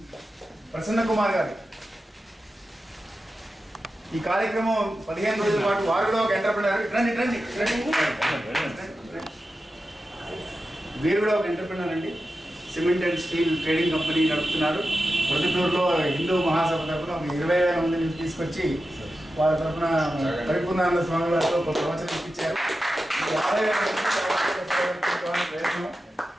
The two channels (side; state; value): both; normal; correlation 0.92